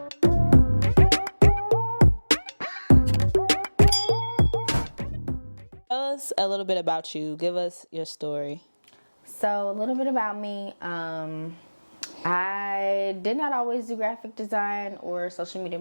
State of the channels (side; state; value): both; inverted; correlation -1.00